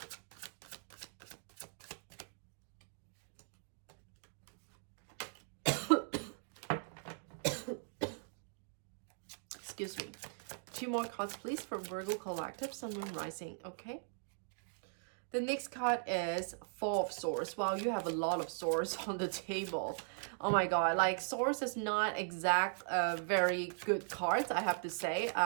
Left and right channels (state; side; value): silent; left; digital silence